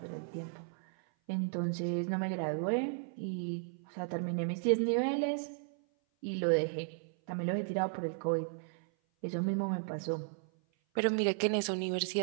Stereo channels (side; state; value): left; silent; 55 dB below the other